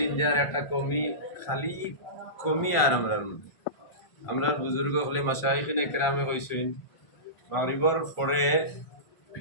যার একটা খালি কমি আর আমরার বুজুর্গ হলে মাশাইখিনে কেরামে কইছেন মাগরিবের পরে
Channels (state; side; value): late; right; 1.5 ms